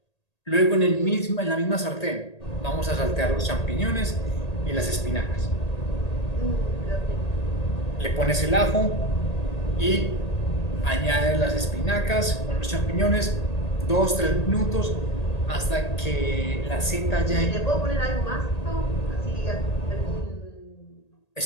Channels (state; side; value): late; right; 1.8 ms